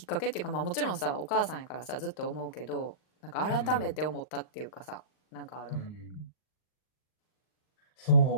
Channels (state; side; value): late; right; 39 ms